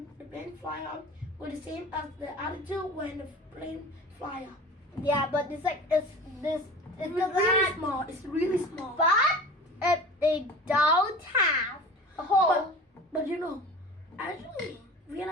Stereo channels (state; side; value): normal; both; correlation 0.39